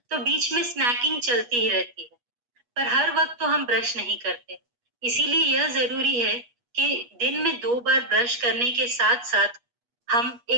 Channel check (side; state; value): left; late; 8.3 ms